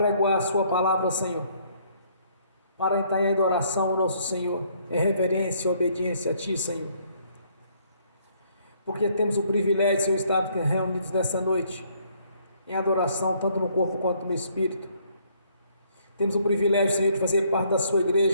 a sua palavra, Senhor, para entrar em adoração ao nosso Senhor, em reverência e obediência a ti, Senhor, porque temos o privilégio, Senhor, de estar reunidos nessa noite, em adoração, tanto no corpo quanto no espírito. Temos o privilégio, Senhor, de fazer parte da sua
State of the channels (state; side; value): inverted; both; correlation -0.65